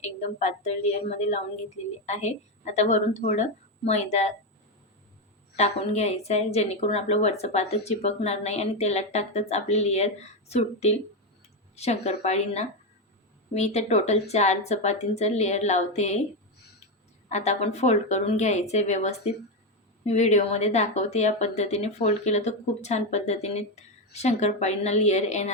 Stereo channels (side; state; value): both; normal; correlation 0.09